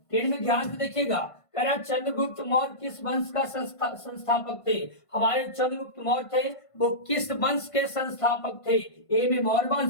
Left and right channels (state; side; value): late; right; 1.5 ms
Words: में ध्यान से देखिएगा। कह रहा है चंद्रगुप्त मौर्य किस वंश का संस्थापक थे। हमारे चंद्रगुप्त मौर्य थे वो किस वंश के संस्थापक थे। ए में मौर्य